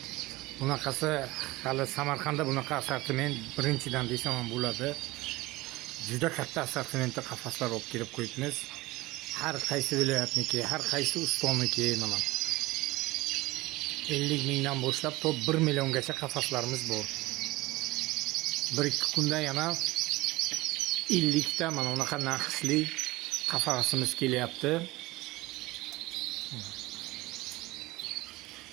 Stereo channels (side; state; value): left; quieter; 20.1 dB